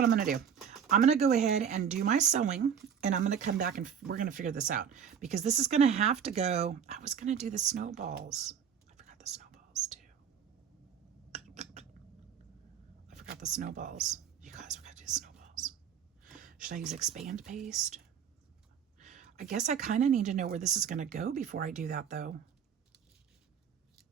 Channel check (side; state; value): left; quieter; 7.8 dB